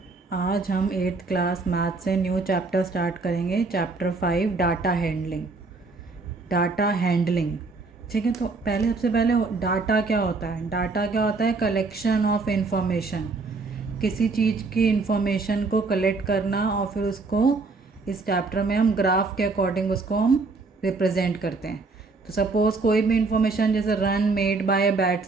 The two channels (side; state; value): left; quieter; 3.9 dB